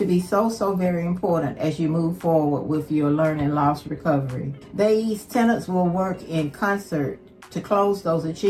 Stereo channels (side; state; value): both; identical; correlation 1.00